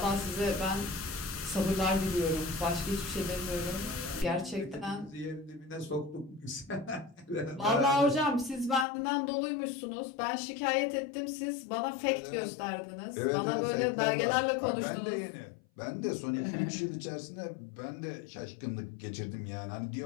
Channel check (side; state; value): right; drops out; at 8.8 s